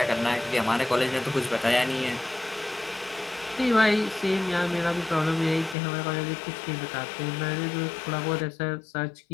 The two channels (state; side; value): drops out; right; at 5.8 s